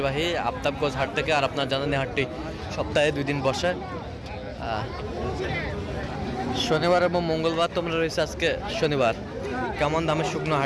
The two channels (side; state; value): both; identical; correlation 1.00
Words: আফতাবগঞ্জ হাট থেকে। আর আপনার জানেন হাটটি সপ্তাহে 2 দিন বসে, শনিবার এবং মঙ্গলবার। তোমরা রয়েছে আজকে শনিবার। কেমন দামে শুকনো